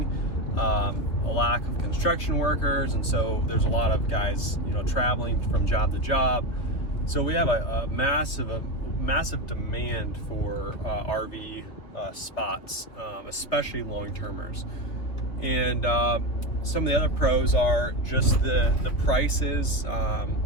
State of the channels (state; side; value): late; right; 3.1 ms